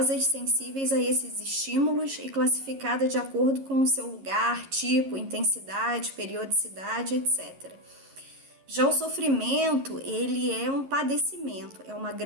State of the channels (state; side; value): late; left; 11 ms